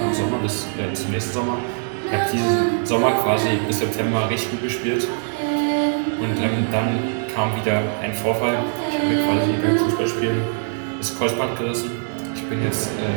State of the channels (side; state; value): left; silent; 59 dB below the other